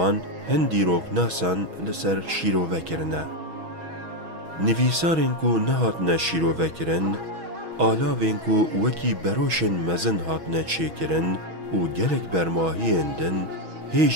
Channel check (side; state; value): left; late; 6.2 ms